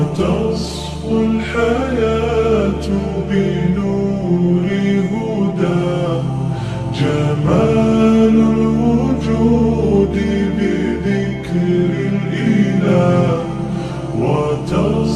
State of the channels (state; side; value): identical; both; correlation 1.00